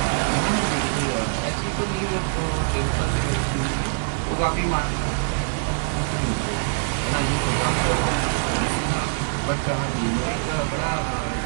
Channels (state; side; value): silent; left; digital silence